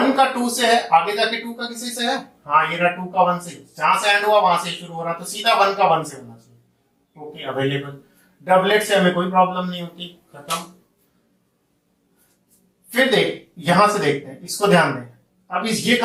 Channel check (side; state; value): both; identical; correlation 1.00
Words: का 2 से है, आगे जाके 2 का किसी से है, हाँ ये रहा 2 का 1 से, जहां से एंड हुआ वहां से शुरू हो रहा, तो सीधा 1 का 1 से होना चाहिए। Okay, available. डबलेट से हमें कोई प्रॉब्लम नहीं होती, खत्म। फिर देख, यहां से देखते हैं, इसको ध्यान दें। अब इस ये